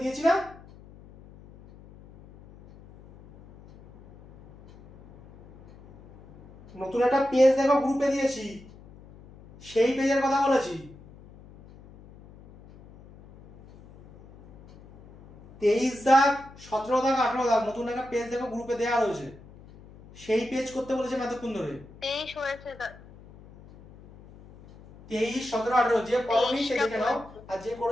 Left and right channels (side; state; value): left; noise; hum, 22 dB below the sound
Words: দিয়েছি না? নতুন একটা পেজ দেখো গ্রুপে দিয়েছি, সেই পেজের কথা বলেছি। 23 দাগ, 17 দাগ, 18 দাগ নতুন একটা পেজ দেখো গ্রুপে দেওয়া রয়েছে, সেই পেজ করতে বলেছে এতক্ষণ ধরে। 23 হয়েছে। 23, 17, 18 যে করনি সে দেখে নাও, আর যে